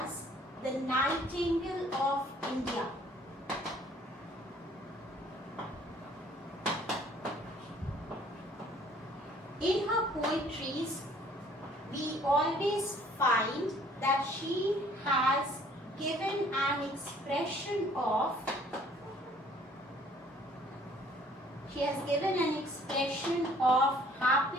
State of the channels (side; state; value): both; normal; correlation 0.57